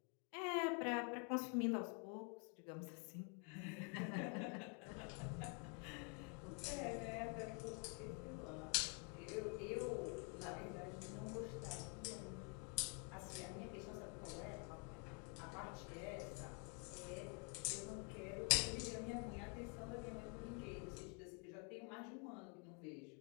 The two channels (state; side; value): quieter; right; 35.6 dB